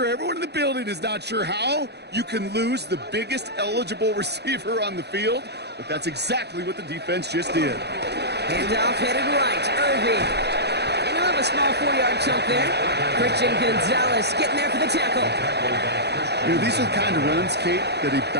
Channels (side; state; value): left; late; 0.48 ms